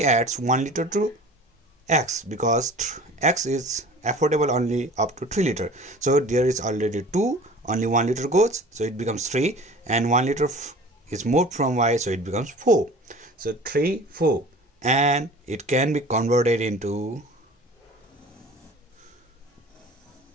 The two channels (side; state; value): both; normal; correlation 0.43